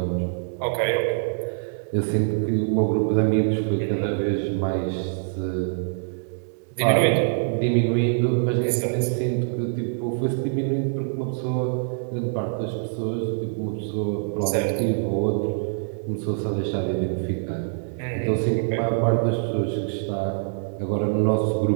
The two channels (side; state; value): left; silent; digital silence